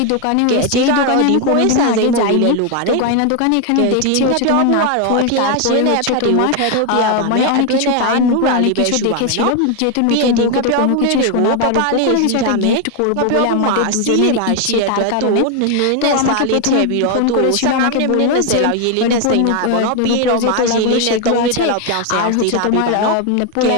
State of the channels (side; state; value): both; different; correlation 0.01